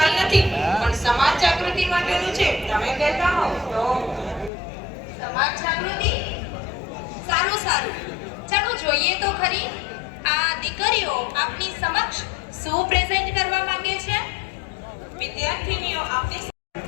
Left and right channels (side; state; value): right; drops out; at 4.5 s